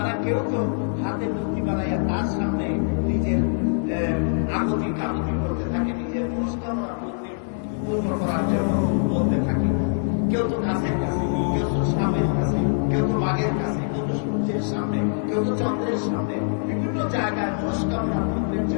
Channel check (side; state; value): right; silent; 63 dB below the other